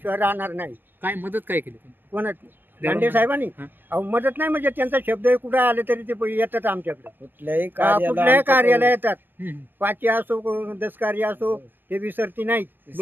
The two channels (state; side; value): late; left; 0.095 ms